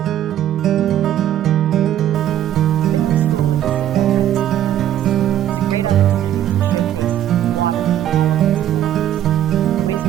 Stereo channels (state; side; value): quieter; left; 11.5 dB